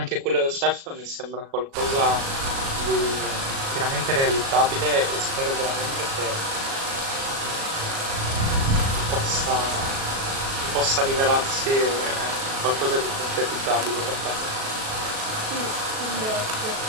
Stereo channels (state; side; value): late; left; 37 ms